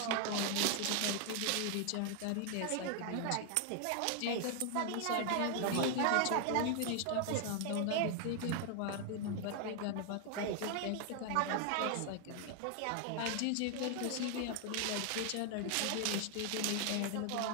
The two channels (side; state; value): both; different; correlation 0.00